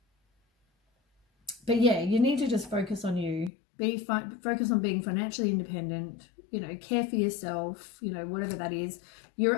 yeah, you need to just focus on you. Focus on being financially independent. You know, care for yourself. You know, whatever that is. You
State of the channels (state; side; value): drops out; right; at 3.5 s